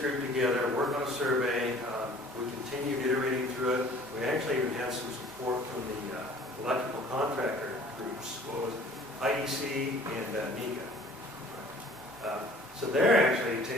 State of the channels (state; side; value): normal; both; correlation 0.50